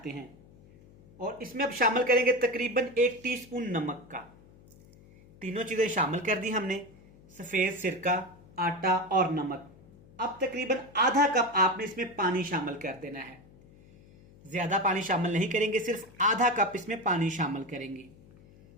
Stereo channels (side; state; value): left; noise; hum, 24 dB below the sound